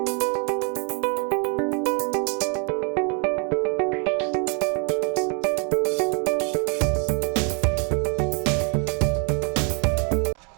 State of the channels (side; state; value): left; quieter; 38.3 dB